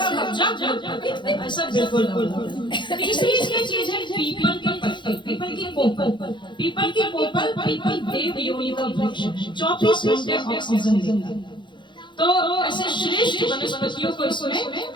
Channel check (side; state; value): right; late; 0.23 ms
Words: कब्जा, ऐसा बिल्कुल नहीं। तीसरी इसकी चीज है पीपल के पत्ते। पीपल की कोपल, पीपल की कोपल, पीपल देव योनि का वृक्ष 24 घंटे ऑक्सीजन देता है। तो ऐसे श्रेष्ठ वनस्पतियों को